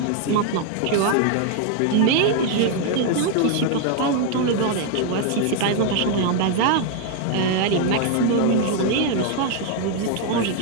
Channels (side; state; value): both; different; correlation 0.00